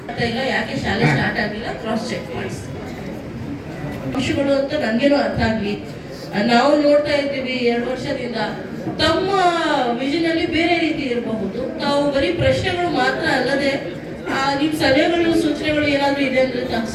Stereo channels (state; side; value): identical; both; correlation 1.00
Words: ಇಲ್ಲ ಯಾಕೆ ಶಾಲೆ ಸ್ಟಾರ್ಟ್ ಆಗಿಲ್ಲ ಕ್ರಾಸ್ ಚೆಕ್ ಮಾಡಿ ಅಂಶಗಳು ಅಂತ ನನ್ಗೇನು ಅರ್ಥ ಆಗ್ಲಿ. ನಾವು ನೋಡ್ತಾ ಇದ್ದೀವಿ 2 ವರ್ಷದಿಂದ ತಮ್ಮ ವಿಷನ್ ಅಲ್ಲಿ ಬೇರೆ ರೀತಿ ಇರಬಹುದು. ತಾವು ಬರೀ ಪ್ರಶ್ನೆಗಳು ಮಾತ್ರ ಅಲ್ಲದೆ ನಿಮ್ ಸಲಹೆಗಳು ಸೂಚನೆಗಳು ಏನಾದ್ರು ಇದೆ ಅಂದ್ರೆ